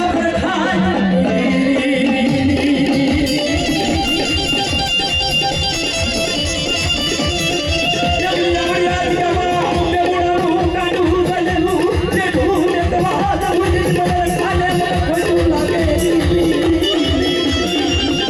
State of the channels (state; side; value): identical; both; correlation 1.00